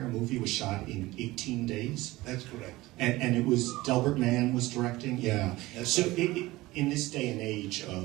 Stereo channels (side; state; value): left; quieter; 19.1 dB